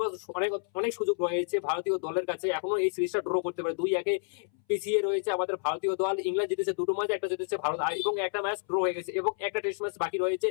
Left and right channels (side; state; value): right; silent; 58 dB below the other